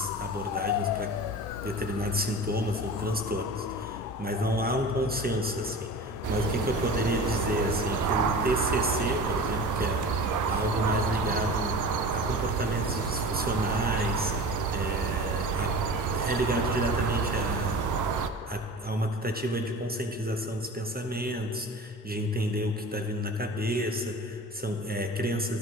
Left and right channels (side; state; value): both; normal; correlation 0.35